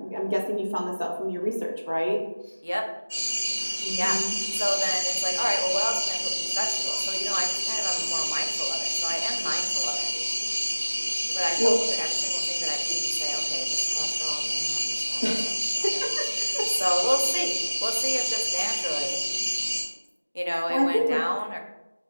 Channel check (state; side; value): inverted; both; correlation -1.00